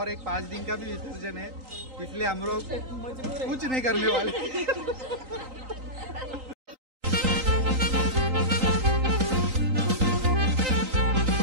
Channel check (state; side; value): late; left; 3.9 ms